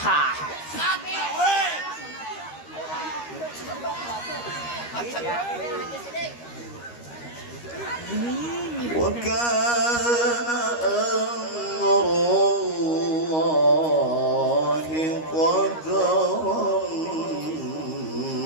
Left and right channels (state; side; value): late; right; 13 ms